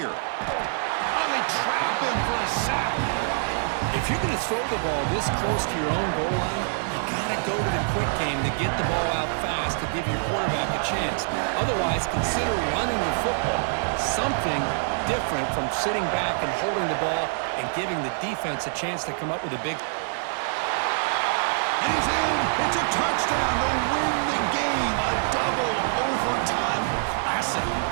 Oh, they trap him for a sack. If you're going to throw the ball this close to your own goal line, you got to go to the quick game to get the ball out fast to give your quarterback a chance. Otherwise, consider running the football. Something different from sitting back and holding the ball and giving the defense a chance to come up with a big... And he's in. It's a touchdown to win the game. A double overtime classic.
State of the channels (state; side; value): silent; left; digital silence